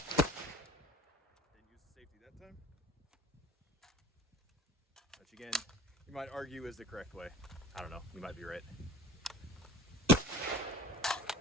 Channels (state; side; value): normal; both; correlation 0.44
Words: use the safety that time. Which again, you might argue is the correct way. I don't know, you might be right.